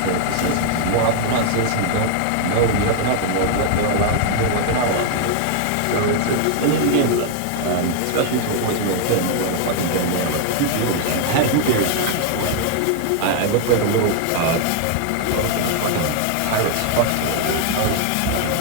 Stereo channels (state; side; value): different; both; correlation 0.00